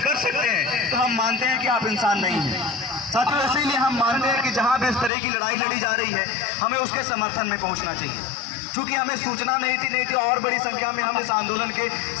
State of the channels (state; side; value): drops out; right; at 5.1 s